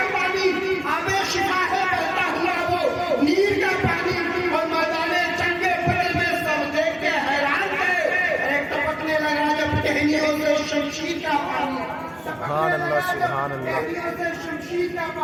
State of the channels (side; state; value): right; noise; hum, 30 dB below the sound